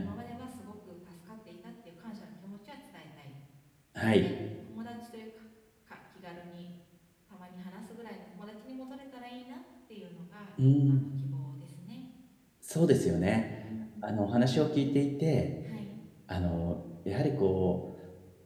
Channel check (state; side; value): identical; both; correlation 1.00